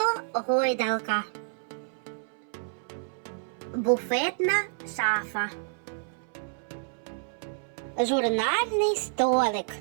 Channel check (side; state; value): left; silent; 59 dB below the other